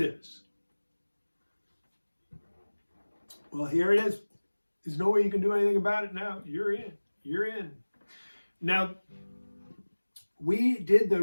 Well, here it is. There's no way you can do anything about it now. You're in. You're in. Now, we did the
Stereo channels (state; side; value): inverted; both; correlation -1.00